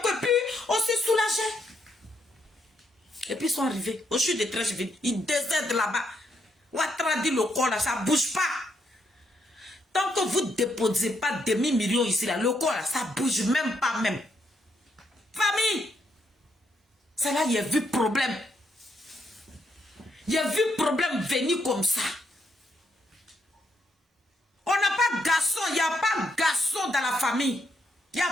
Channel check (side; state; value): both; normal; correlation 0.76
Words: puis on s'est soulagé. Et puis ils sont arrivés au chute de Treichville, ils décèdent là-bas. Ouattara dit le corps là, ça ne bouge pas. Tant que vous ne déposez pas demi-million ici, là, le corps, là, ça ne bouge même pas même. Famille, c'est là il y a vu problème. Il y a vu problème venir comme ça. On n'a pas de garçon, il n'y a pas de garçon dans la famille. Il n'y